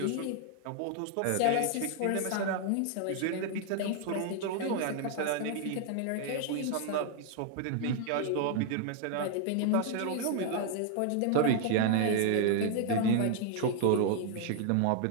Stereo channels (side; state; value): both; different; correlation 0.00